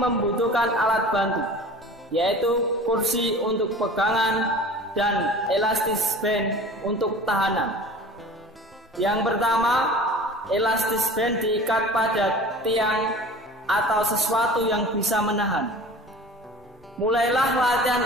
alat bantu, yaitu kursi untuk pegangan dan elastis band untuk tahanan. Yang pertama, elastis band diikat pada tiang atau sesuatu yang bisa menahan. Mulailah latihan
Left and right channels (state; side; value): normal; both; correlation 0.41